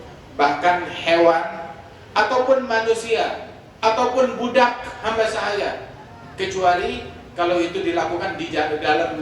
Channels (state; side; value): identical; both; correlation 1.00